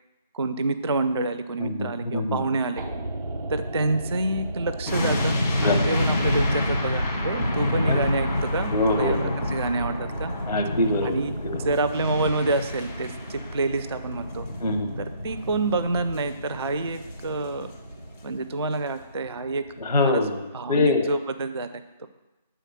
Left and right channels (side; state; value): both; inverted; correlation -0.65